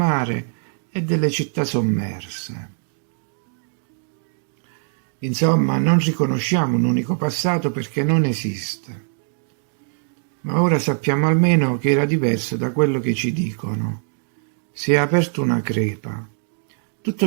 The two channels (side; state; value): left; silent; digital silence